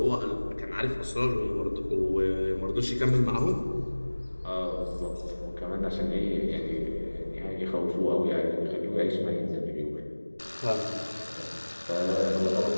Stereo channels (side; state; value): both; inverted; correlation -1.00